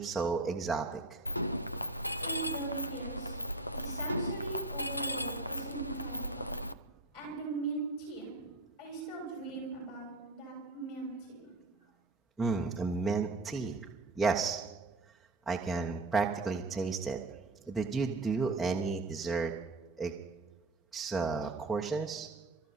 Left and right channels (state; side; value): quieter; left; 3.0 dB